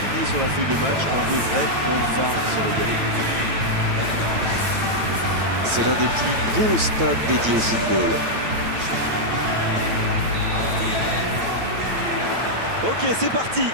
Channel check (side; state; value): left; late; 9.0 ms